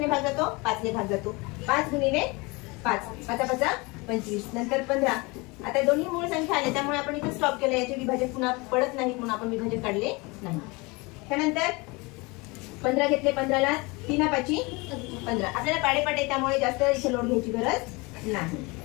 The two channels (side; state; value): right; quieter; 26.0 dB